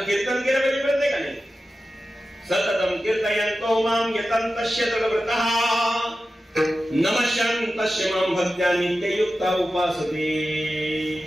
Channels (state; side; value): normal; both; correlation 0.93